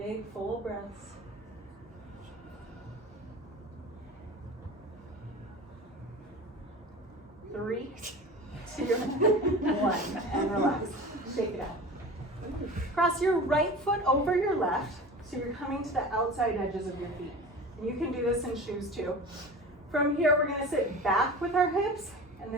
full breaths. 3, 2, 1, and relax. Shake it out. Cross your right foot over your left, so you're coming to the outside edges of your feet. And you can do this in shoes too. From here, we're gonna sit back with our hips and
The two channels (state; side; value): normal; both; correlation 0.35